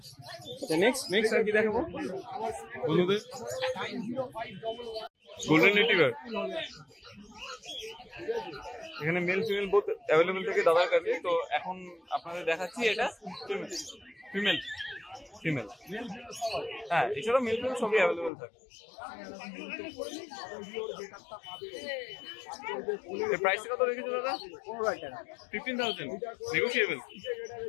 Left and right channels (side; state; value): right; drops out; at 18.3 s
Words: নেক্সট আর কি দেখাবো বন্ধুদের? গোল্ডেন রিট্রিভার, এখানে মেল ফিমেল বোথ অ্যাভেলেবল থাকে দাদার কাছে। তো এখন আপনাদের দেখাচ্ছি এটা ফিমেল, হ্যাঁ এছাড়াও মেল ফিমেল সবই অ্যাভেলেবল থাকে। প্রাইসটা কত রেখেছো দাদা? 15,000 নেগোশিয়েবল।